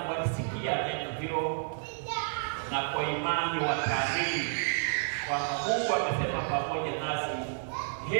walisikia neno hilo, na kwa imani wakaamini kwamba Mungu amesema pamoja nasi,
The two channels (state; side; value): silent; left; digital silence